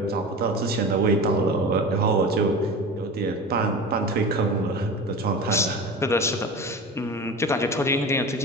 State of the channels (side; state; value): both; normal; correlation 0.32